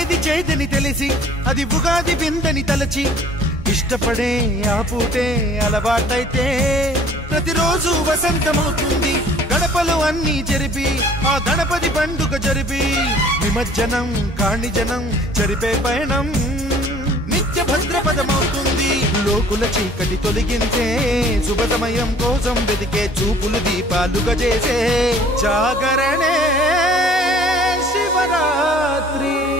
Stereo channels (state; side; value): normal; both; correlation 0.53